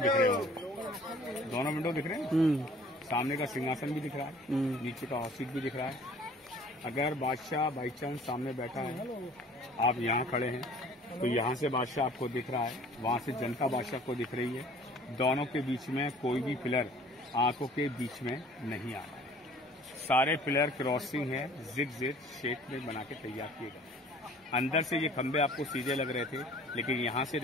रहे होंगे, दोनों विंडो दिख रहे हैं। सामने का सिंहासन भी दिख रहा है, नीचे का हॉट सीट भी दिख रहा है। अगर बादशाह बाई चांस सामने बैठा है, आप यहाँ खड़े हैं, तो यहाँ से बादशाह आपको दिख रहा है, वहाँ से जनता बादशाह को दिख रही है। दोनों के बीच में कोई भी पिलर आंखों के बीच में नहीं आ रहा है। सारे पिलर क्रॉसिंग है, जिग-जैग शेप में बना के तैयार किए गए। अंदर से ये खंबे आपको सीधे लग रहे थे, लेकिन यहाँ से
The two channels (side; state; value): both; normal; correlation 0.51